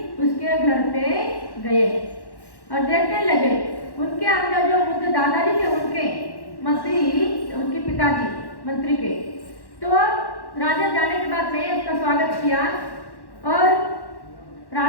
उसके घर पे गए और देखने लगे। उनके अंदर जो बुद्ध दादाजी थे, उनके मंत्री, उनके पिताजी मंत्री के, तो राजा जाने के बाद में उसका स्वागत किया और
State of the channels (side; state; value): right; late; 1.1 ms